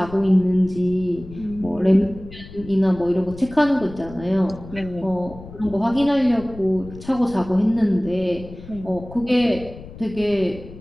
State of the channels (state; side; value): noise; left; rumble, 16 dB below the sound